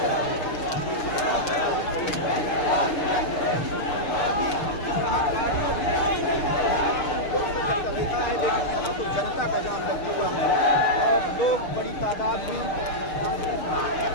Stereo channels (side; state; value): right; late; 6.5 ms